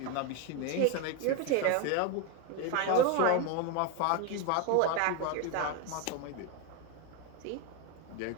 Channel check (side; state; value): both; different; correlation 0.02